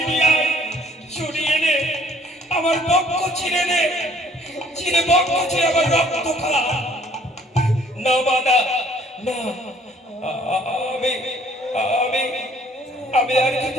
নিয়ে আয়, ছুরি এনে আমার বক্ষ চিরে নে, চিরে বক্ষ চিরে আমার রক্ত খা। না মা না, না, আমি আর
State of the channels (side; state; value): both; normal; correlation 0.58